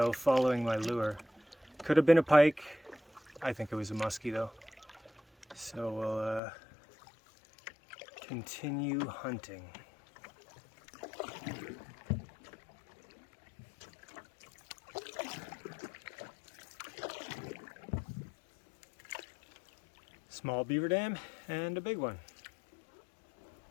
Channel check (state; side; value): drops out; right; at 6.4 s